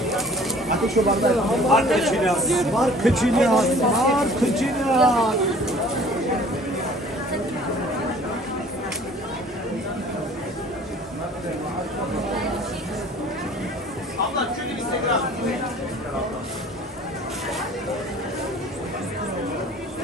Ateş şu bardağı. Var kıçını. Var kıçını. Var kıçını.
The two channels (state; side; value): normal; both; correlation 0.50